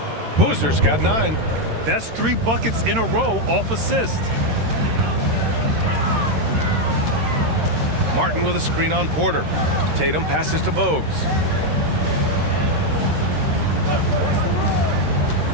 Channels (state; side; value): late; left; 13 ms